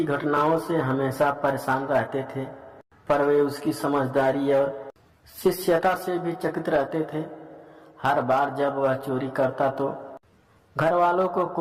घटनाओं से हमेशा परेशान रहते थे, पर वे उसकी समझदारी और शिष्यता से भी चकित रहते थे। हर बार जब वह चोरी करता तो घर वालों को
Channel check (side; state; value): both; identical; correlation 1.00